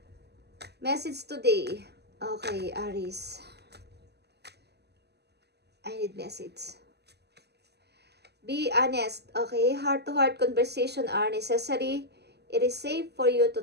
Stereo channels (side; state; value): left; late; 0.49 ms